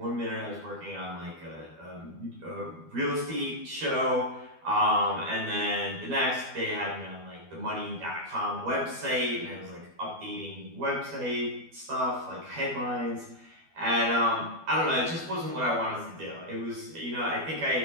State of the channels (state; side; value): late; left; 12 ms